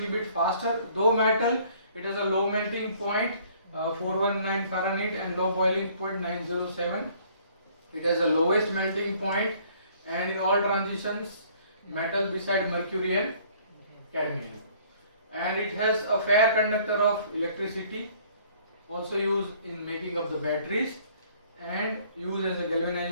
bit faster. Though metal, it has a low melting point 419 Fahrenheit and low boiling point 907. It has a lowest melting point, and in all transitions metal beside mercury and cadmium, and it has a fair conductor of electricity, also used in making of the batteries, and used as a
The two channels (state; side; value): inverted; both; correlation -0.58